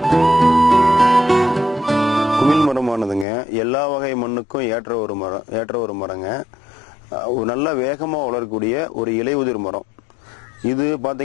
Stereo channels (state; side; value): drops out; right; at 3.2 s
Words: எல்லா வகை மண்ணுக்கும் ஏற்ற ஒரு மரங்க. நல்ல வேகமாக வளரக்கூடிய ஒரு இலையுதிர் மரம். இது